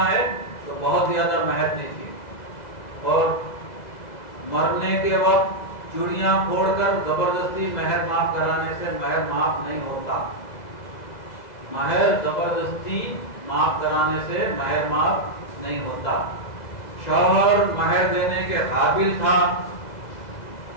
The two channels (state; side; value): late; right; 2.0 ms